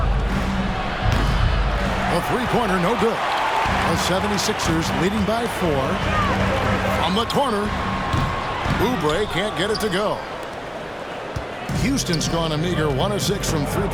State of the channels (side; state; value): both; identical; correlation 1.00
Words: A three-pointer, no good. The 76ers leading by 4. From the corner, Oubre can't get it to go. Houston's gone a meager 1 of 6 from